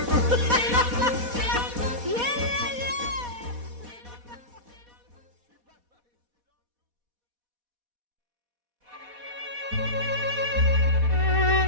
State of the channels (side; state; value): left; late; 4.1 ms